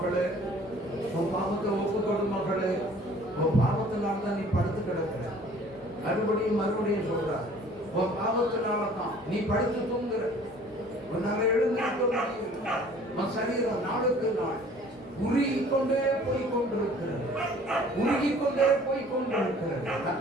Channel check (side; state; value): both; normal; correlation 0.52